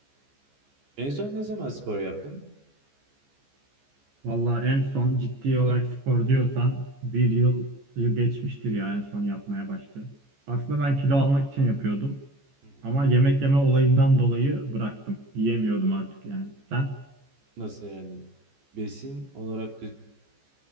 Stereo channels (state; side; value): late; left; 14 ms